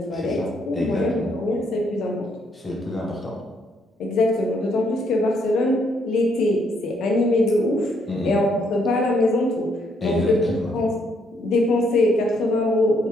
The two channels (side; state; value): both; normal; correlation 0.72